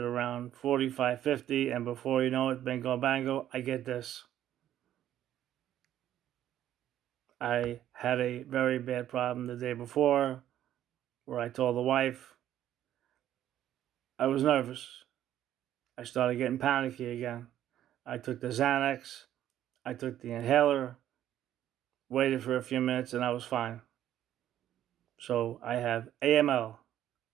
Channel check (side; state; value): left; quieter; 11.7 dB